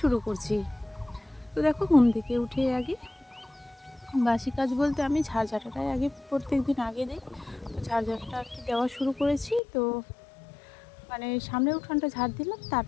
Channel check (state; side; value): drops out; right; at 9.6 s